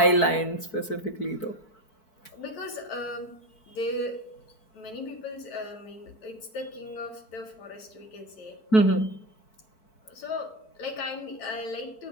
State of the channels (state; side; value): late; right; 4.6 ms